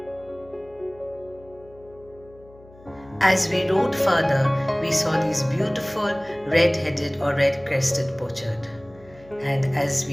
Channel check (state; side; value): noise; left; hum, 24 dB below the sound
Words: As we rode further, we saw these beautiful red-headed or red-crested pochard. And as